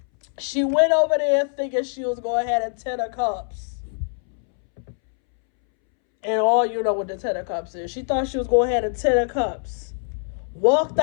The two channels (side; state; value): right; silent; 63 dB below the other